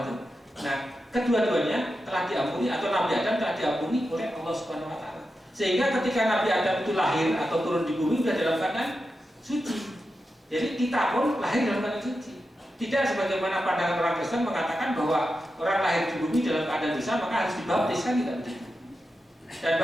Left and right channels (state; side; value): normal; both; correlation 0.89